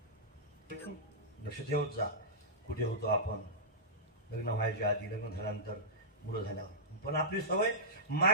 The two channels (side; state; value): both; normal; correlation -0.16